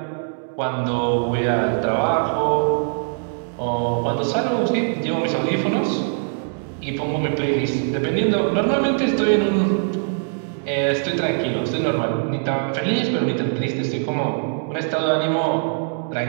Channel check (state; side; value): silent; left; digital silence